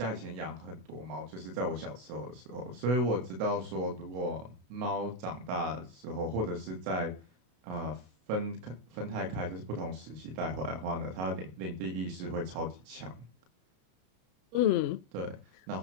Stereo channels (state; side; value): late; left; 32 ms